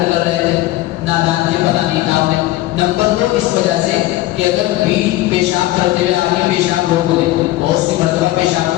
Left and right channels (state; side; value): quieter; right; 16.6 dB